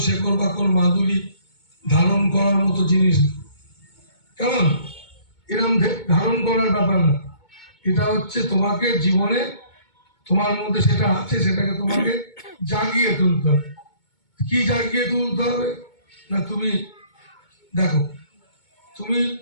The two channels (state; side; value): late; right; 2.2 ms